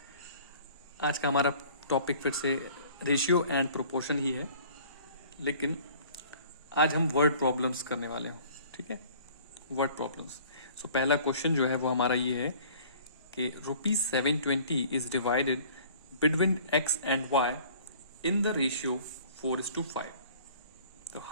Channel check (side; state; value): both; inverted; correlation -0.50